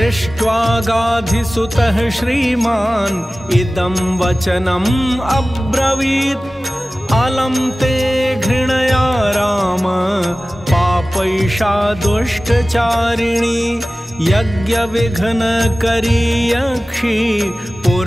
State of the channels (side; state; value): both; normal; correlation 0.97